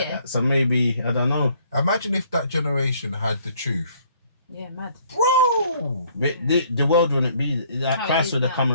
that. So maybe, I don't know. Imagine if that generation had the truth. Yeah, mad. Bro! The world wouldn't be like How it Christ is would have now. come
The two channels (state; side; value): inverted; both; correlation -0.62